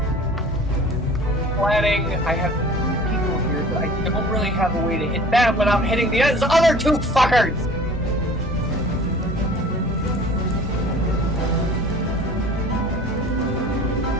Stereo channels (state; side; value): normal; both; correlation 0.45